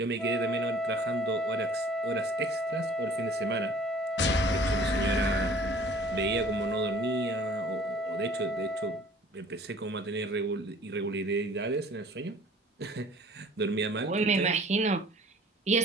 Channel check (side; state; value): both; normal; correlation 0.51